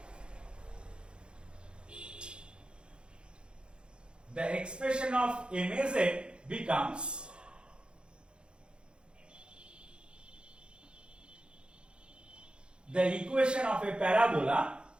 the expression of MAZ becomes the equation of a parabola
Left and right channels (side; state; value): left; late; 0.054 ms